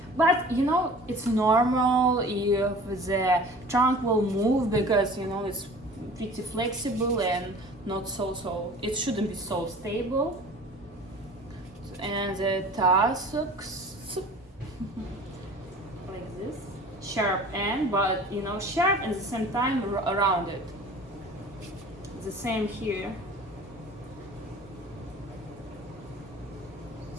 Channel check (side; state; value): both; normal; correlation 0.43